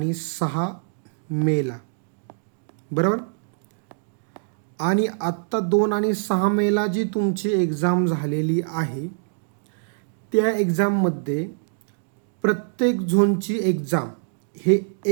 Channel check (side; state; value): left; silent; digital silence